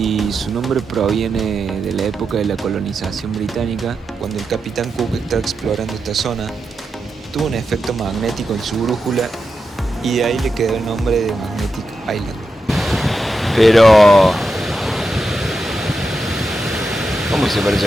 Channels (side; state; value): both; normal; correlation 0.88